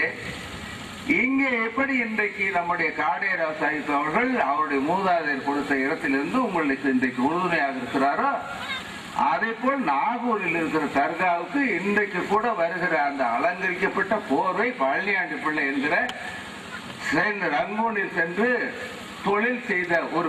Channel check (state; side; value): identical; both; correlation 1.00